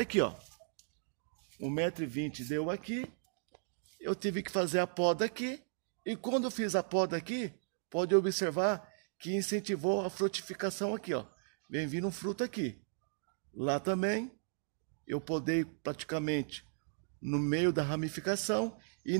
ó. 1,20 m deu aqui. Eu tive que fazer a poda aqui. E quando eu fiz a poda aqui, pode observar que incentivou a frutificação aqui, ó. Vem vindo um fruto aqui. Lá também, eu podei praticamente no meio da ramificação e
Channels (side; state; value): left; silent; digital silence